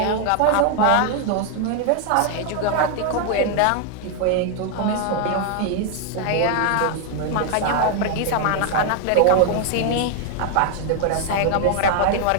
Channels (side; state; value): both; different; correlation 0.00